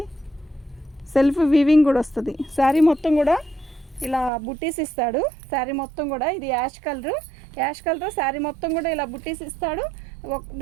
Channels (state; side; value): drops out; left; at 4.3 s